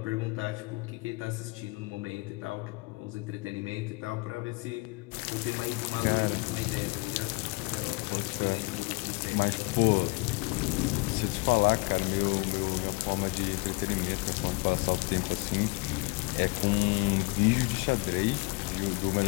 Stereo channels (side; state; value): right; quieter; 26.9 dB